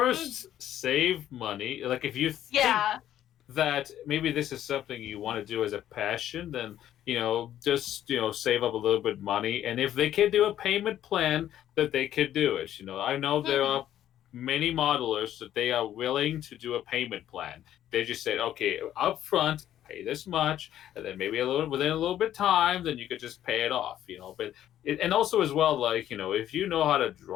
save money. Like if you think that maybe this is something you want to do as a passion, then just save up a little bit of money, and if they can do a payment plan, that they could do it. I know there are many modelers that they are willing to do a payment plan. They just said, okay, up front, pay this much, and then maybe within a little bit of time, then you could just pay it off. But and also as well, like if you know how to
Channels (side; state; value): right; quieter; 11.6 dB